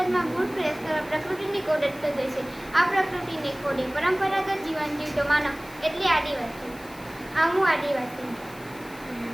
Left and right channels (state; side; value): noise; left; hiss, 21 dB below the sound